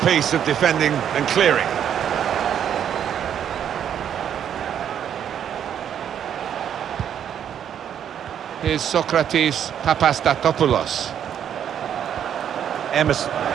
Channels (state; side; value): quieter; left; 9.2 dB